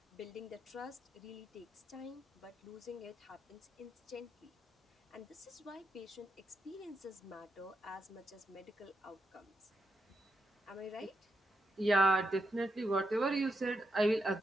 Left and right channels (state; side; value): normal; both; correlation 0.83